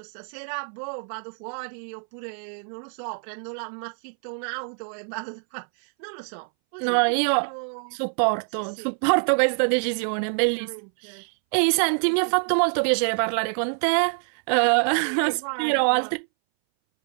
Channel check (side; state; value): left; silent; 61 dB below the other